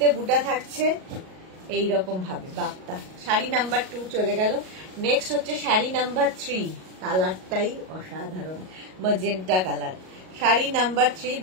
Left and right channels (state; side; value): late; left; 38 ms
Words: বুটা থাকছে এইরকম ভাবে বাপ্তা। শাড়ি নাম্বার 2 চলে গেল। নেক্সট হচ্ছে শাড়ি নাম্বার 3, কালারটাই অসাধারণ, ম্যাজেন্টা কালার। শাড়ি নাম্বার 3